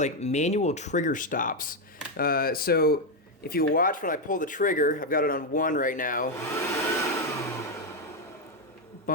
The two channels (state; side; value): normal; both; correlation 0.04